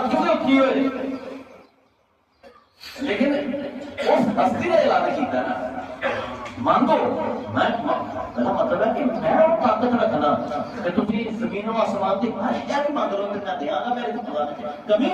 کیوں اٹھی ہوئے لیکن اس ہستی نے اعلان کیتا نا مانگو میں مطلب ہے کہ میں طاقت رکھنا کہ تم زمین و آسمان کی ہر شہر مانگ لو تو میں دیا گا، میرے کو کمی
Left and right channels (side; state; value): both; identical; correlation 1.00